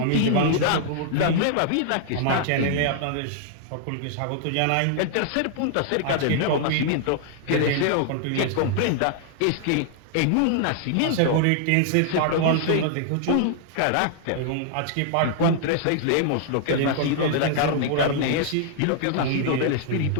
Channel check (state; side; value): different; both; correlation -0.01